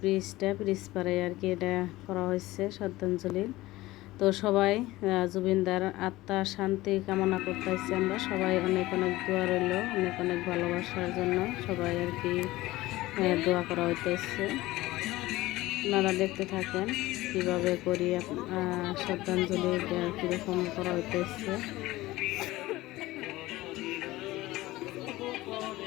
পারে আর কি এটা করা হয়েছে শ্রদ্ধাঞ্জলি। তো সবাই জুবিনদার আত্মার শান্তি কামনা করতেছি। আমরা সবাই অনেক অনেক দোয়া রইল, অনেক অনেক ভালোবাসার জন্য সবাই আর কি দোয়া করা হইতেছে। আপনারা দেখতে থাকেন কিভাবে করি শ্রদ্ধাঞ্জলি কীরকম করা হইতেছে।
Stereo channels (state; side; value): quieter; right; 18.2 dB